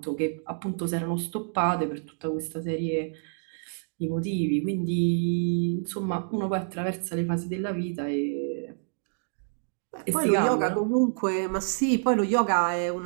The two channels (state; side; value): silent; left; digital silence